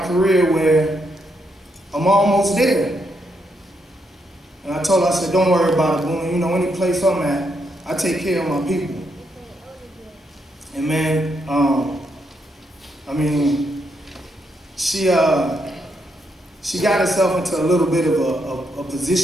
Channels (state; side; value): normal; both; correlation 0.79